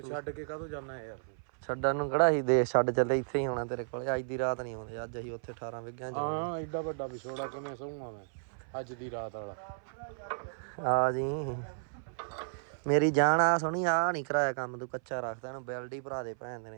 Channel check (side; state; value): left; silent; 56 dB below the other